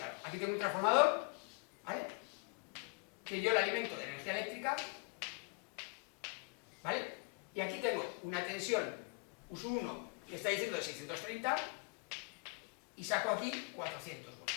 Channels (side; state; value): right; quieter; 34.6 dB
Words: Aquí tengo un transformador, ¿vale? Que yo le alimento de energía eléctrica, ¿vale? Y aquí tengo una tensión ISU 1 que está diciendo de 630 y saco aquí 400